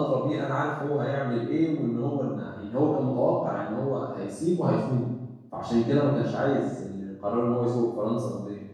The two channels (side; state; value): both; identical; correlation 1.00